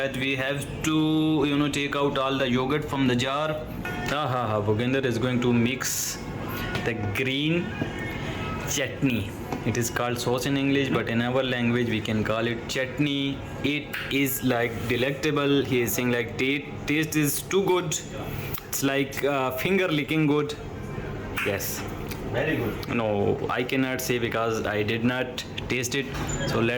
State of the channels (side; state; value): both; identical; correlation 1.00